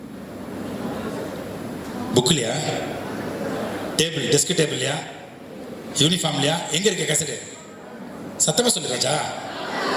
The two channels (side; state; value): both; identical; correlation 1.00